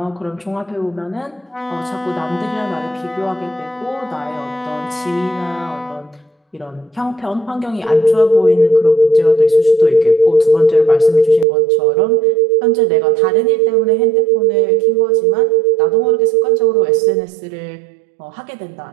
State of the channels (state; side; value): drops out; left; at 11.5 s